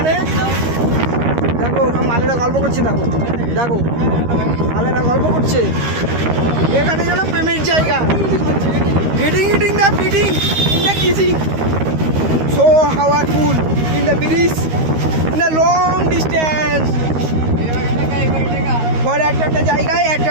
দেখো মালেরা গল্প করছে, দেখো দেখো মালেরা গল্প করছে। এখানে যেন প্রেমের জায়গা, eating the fitting in the kissing, so powerful in the bridge in the long distance. For একটা জায়গায়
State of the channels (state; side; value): late; left; 13 ms